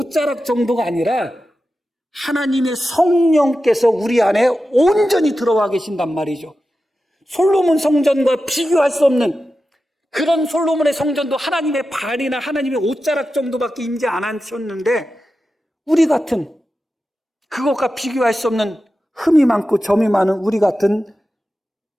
정도가 아니라 하나님의 성령께서 우리 안에 온전히 들어와 계신단 말이죠. 솔로몬 성전과 비교할 수 없는 그런 솔로몬의 성전도 하나님의 발이나 하나님의 옷자락 정도밖에 임재 안 하셨는데 우리 같은 그것과 비교할 수 없는 흠이 많고 점이 많은 우리 같은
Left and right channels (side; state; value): both; normal; correlation 0.92